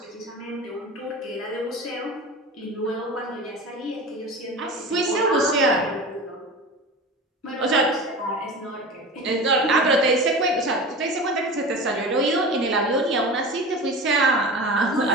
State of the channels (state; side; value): normal; both; correlation 0.32